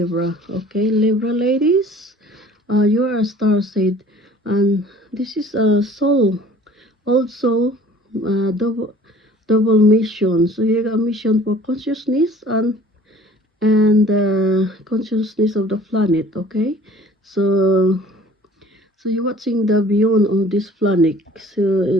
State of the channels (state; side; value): normal; both; correlation 0.50